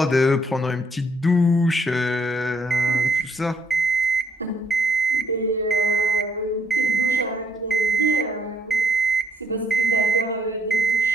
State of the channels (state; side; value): normal; both; correlation 0.69